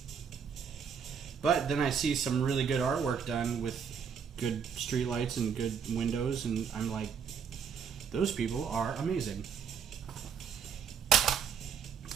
But then I see some really good artwork done with good streetlights and good windows, and I'm like, those people are amazing.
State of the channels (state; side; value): quieter; left; 6.9 dB